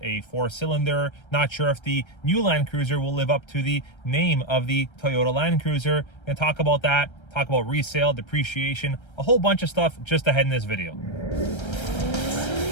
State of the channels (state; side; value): late; right; 1.3 ms